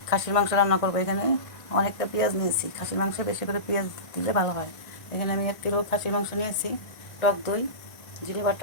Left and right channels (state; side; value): late; right; 1.5 ms